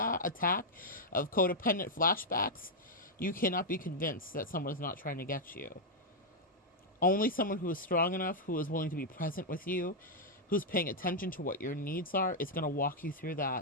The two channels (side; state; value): both; normal; correlation -0.03